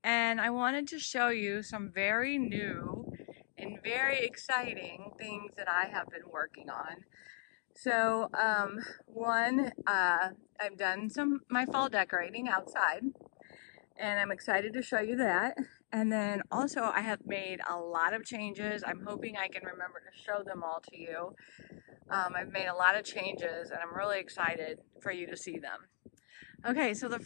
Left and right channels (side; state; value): right; silent; 53 dB below the other